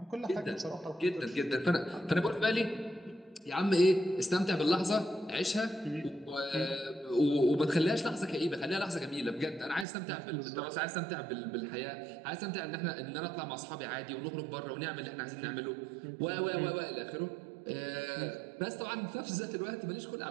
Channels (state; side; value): drops out; left; at 9.9 s